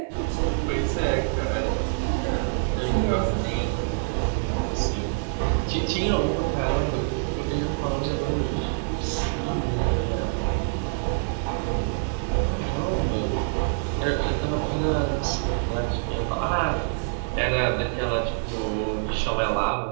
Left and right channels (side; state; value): left; silent; digital silence